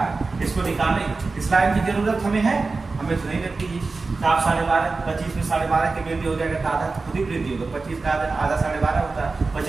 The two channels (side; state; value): left; quieter; 3.9 dB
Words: है। इसको निकालने इस लाइन की जरूरत हमें है, हमें तो नहीं लगती है। तो आप 12.5 25 में 12.5 की वृद्धि हो जाएगा, तो आधा खुद ही वृद्धि होगा, 25 का आधा 12.5 होता है,